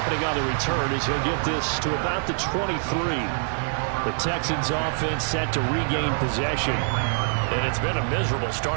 on the return as he'll get this to about the 23. The Texans offense set to regain possession. And it's been a miserable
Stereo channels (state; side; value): silent; left; 62 dB below the other